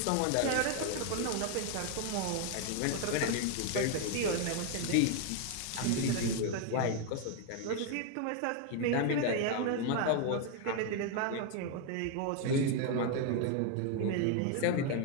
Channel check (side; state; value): both; different; correlation 0.01